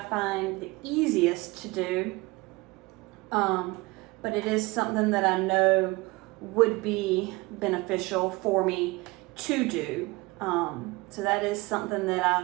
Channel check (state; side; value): quieter; left; 22.7 dB